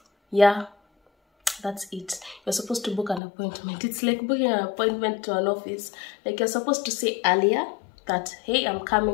that's it. You're supposed to book an appointment. It's like booking an appointment to an office. Like you're supposed to say earlier that, hey, I'm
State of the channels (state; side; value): drops out; right; at 3.2 s